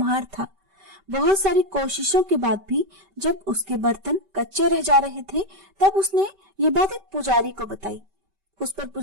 था। बहुत सारी कोशिशों के बाद भी जब उसके बर्तन कच्चे रह जा रहे थे तब उसने ये बात एक पुजारी को बताई। उस पर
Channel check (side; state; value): left; late; 5.2 ms